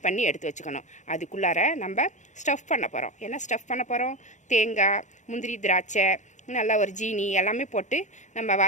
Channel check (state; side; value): late; right; 0.35 ms